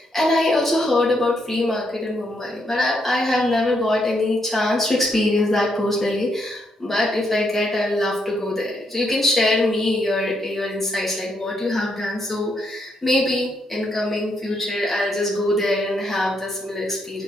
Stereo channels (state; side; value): normal; both; correlation 0.77